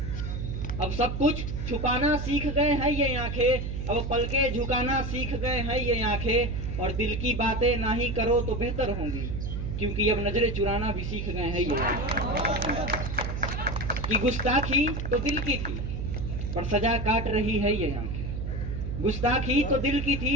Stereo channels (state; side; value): noise; right; hum, 4 dB below the sound